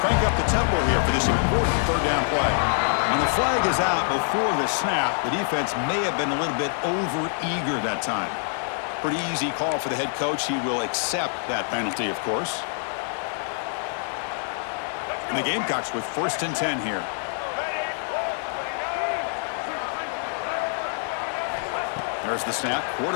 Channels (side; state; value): right; silent; 61 dB below the other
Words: up the tempo here for this important third down play. When the flag is out before the snap, the defense may have been a little bit over-eager that time. Pretty easy call for the head coach. He will accept that penalty, of course. And the Gamecocks with 1st and 10 here. There's the snap.